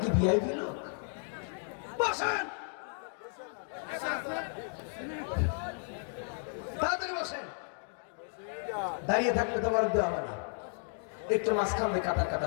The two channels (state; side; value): silent; right; 55 dB below the other